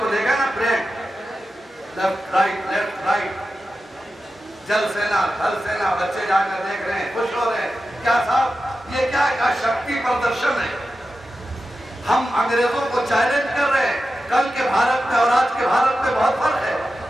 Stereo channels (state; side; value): normal; both; correlation 0.92